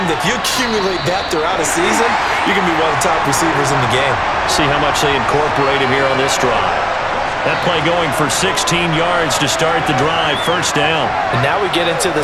that if you accumulate that throughout a season, you can be one of the top receivers in the game. See how much they incorporate him here on this drive. That play going for 16 yards to start the drive, first down. And now we get into the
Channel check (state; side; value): identical; both; correlation 1.00